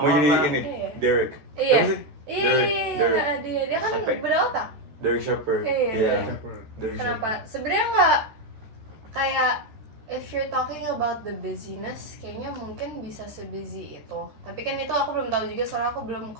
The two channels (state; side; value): late; left; 13 ms